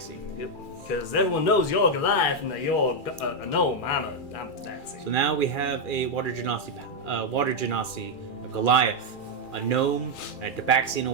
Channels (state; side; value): late; right; 2.4 ms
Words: Yep. Because everyone knows you're Goliath and that you're a gnome. I'm a Tabaxi. So now we have a water genasi, a Goliath, a gnome, and a Tabaxi